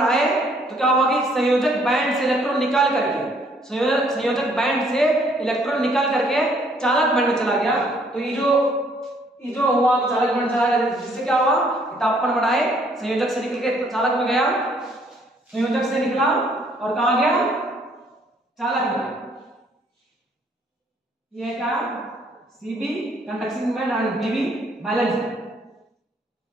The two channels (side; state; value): both; normal; correlation 0.64